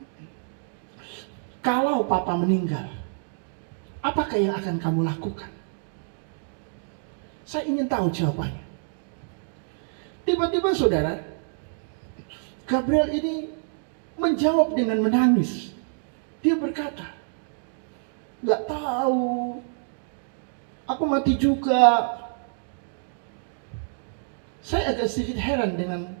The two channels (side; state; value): left; silent; digital silence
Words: kalau papa meninggal, apakah yang akan kamu lakukan? Saya ingin tahu jawabannya. Tiba-tiba saudara, Gabriel ini menjawab dengan menangis. Dia berkata, gak tahu, aku mati juga. Saya agak sedikit heran dengan